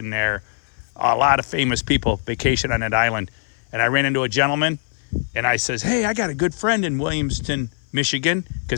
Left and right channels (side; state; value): right; silent; 57 dB below the other